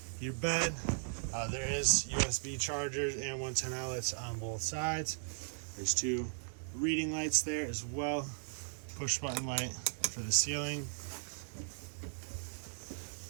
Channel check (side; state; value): left; silent; 53 dB below the other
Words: your bed. There is USB chargers and 110 outlets on both sides. There's two reading lights there as well. Push button light for the ceiling.